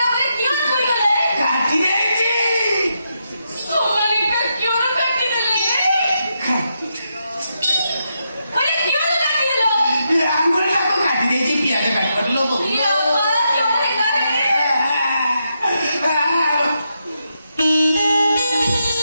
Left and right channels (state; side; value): inverted; both; correlation -0.83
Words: କାଟି ଯାଇଛି ଆଙ୍ଗୁଳିଟାକୁ କାଟି ଦେଇଛି ପିଆଜ କାଟିଲ